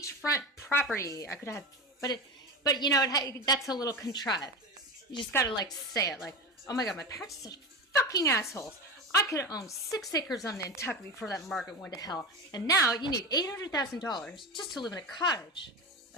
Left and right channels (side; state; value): both; normal; correlation 0.24